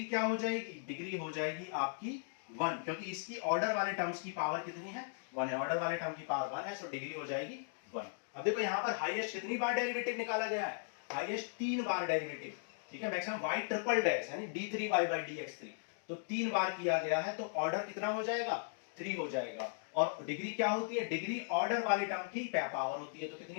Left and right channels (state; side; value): silent; right; digital silence